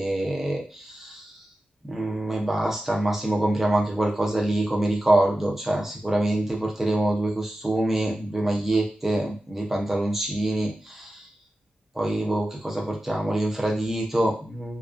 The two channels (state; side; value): normal; both; correlation 0.93